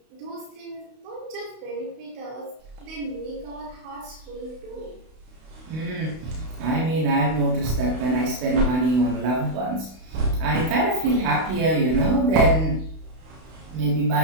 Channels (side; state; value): left; late; 32 ms